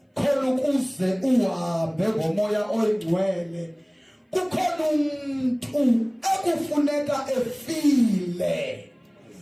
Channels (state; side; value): identical; both; correlation 1.00